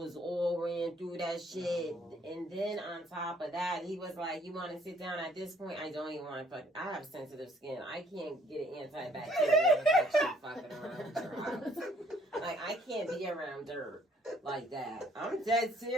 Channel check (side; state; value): both; normal; correlation 0.63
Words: all ran through that shit. And then on top of that, he was like, "You want to sit down?" At this point, I don't even want to fuck. I have sensitive skin. I can't get an antibacterial infection fucking around your house. Like, I can't be around dirt like that. I'm dead